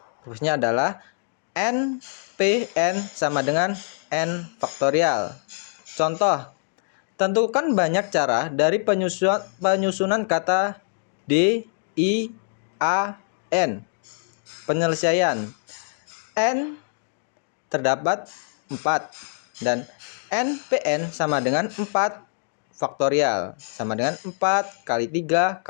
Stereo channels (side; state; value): right; silent; 62 dB below the other